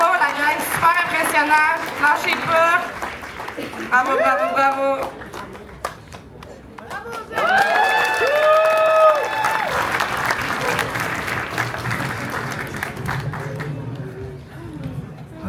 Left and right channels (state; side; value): identical; both; correlation 1.00